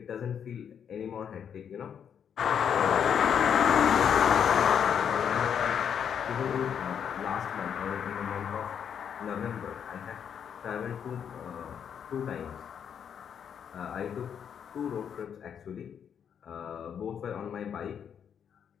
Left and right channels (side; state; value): right; quieter; 8.0 dB